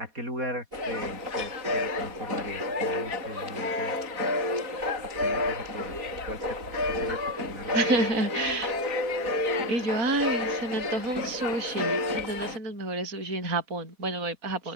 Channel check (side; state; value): left; late; 4.2 ms